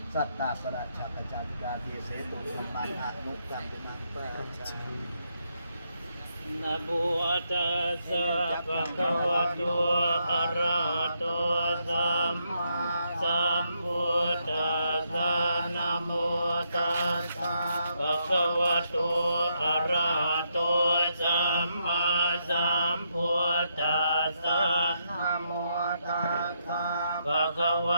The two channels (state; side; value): inverted; both; correlation -0.78